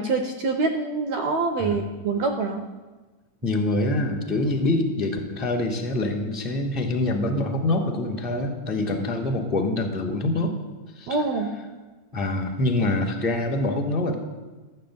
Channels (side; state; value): left; late; 8.7 ms